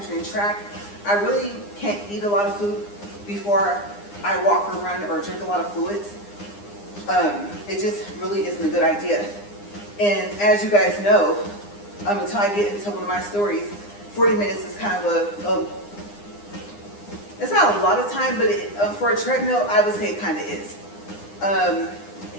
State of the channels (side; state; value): right; late; 9.8 ms